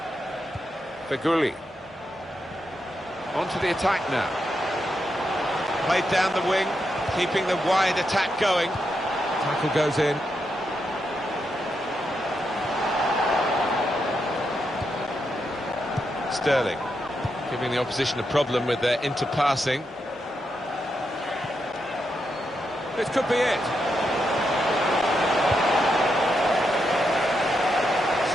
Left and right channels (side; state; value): both; normal; correlation 0.83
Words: Feghouli. Onto the attack now. Played down the wing. Keeping the wide attack going. Tackle goes in. Sterling giving the opposition a problem with their interpassing. This could be it.